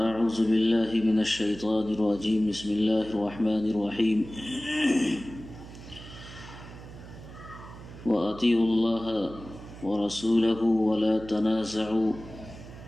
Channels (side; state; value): right; noise; hum, 15 dB below the sound